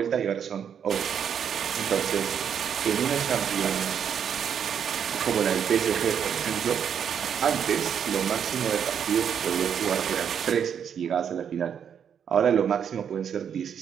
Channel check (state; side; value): quieter; left; 8.0 dB